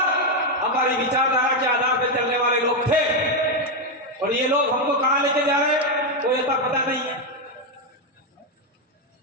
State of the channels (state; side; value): normal; both; correlation 0.05